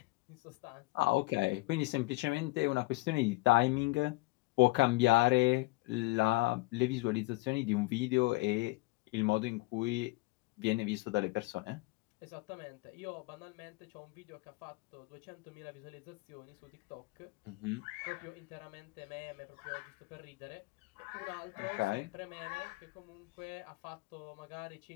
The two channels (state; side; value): quieter; right; 23.4 dB